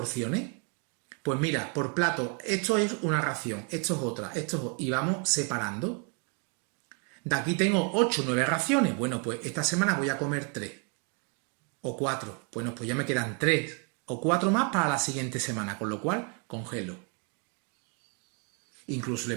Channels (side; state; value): left; quieter; 33.7 dB